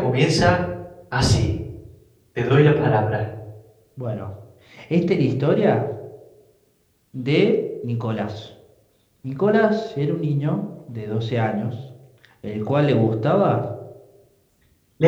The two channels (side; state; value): both; identical; correlation 1.00